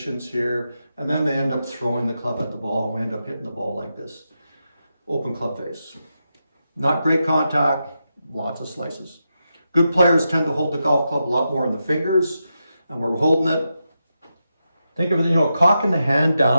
here, and then they end up throwing the club at the ball, and we end up hitting the ball like this. Open club face. Not great contact, lots of slices. Good players tend to hold the golf club a lot more in the fingers, and we're holding it. Think of it, you know, cocking the hand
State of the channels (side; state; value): both; inverted; correlation -0.87